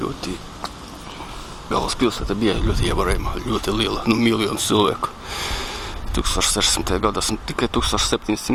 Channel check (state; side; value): identical; both; correlation 1.00